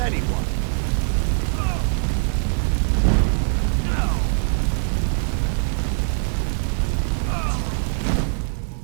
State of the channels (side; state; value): left; silent; 64 dB below the other